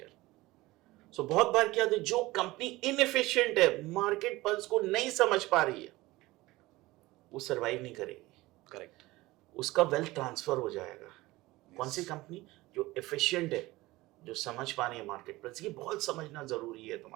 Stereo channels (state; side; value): quieter; left; 19.5 dB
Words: सो बहुत बार क्या होता है, जो कंपनी इनएफिशिएंट है, मार्केट पल्स को नहीं समझ पा रही है, वो सरवाइव नहीं करेगी। Correct. उसका वेल्थ ट्रांसफर हो जाएगा। कौन सी कंपनी? जो एफिशिएंट है, जो समझ पा रही है मार्केट पल्स। ये बहुत समझना जरूरी है